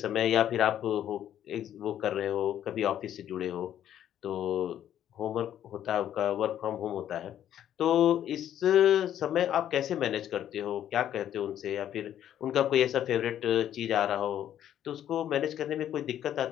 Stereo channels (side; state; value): right; quieter; 10.8 dB